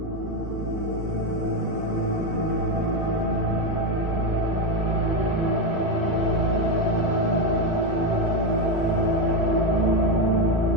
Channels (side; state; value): both; normal; correlation 0.10